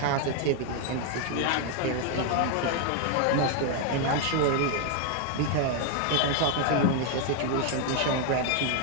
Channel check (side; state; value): both; different; correlation 0.00